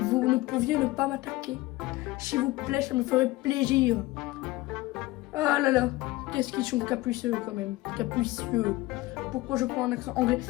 ne pouviez ne pas m'attaquer, s'il vous plaît, ça me ferait plaisir. Ah là là, qu'est-ce qu'ils sont capricieux quand même, capricieux. Pourquoi je prends un accent anglais?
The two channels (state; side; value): quieter; right; 19.2 dB